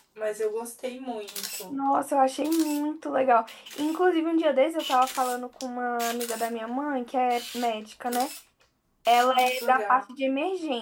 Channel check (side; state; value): both; identical; correlation 1.00